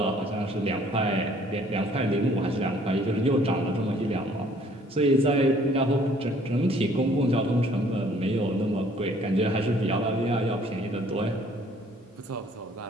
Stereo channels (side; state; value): both; normal; correlation 0.59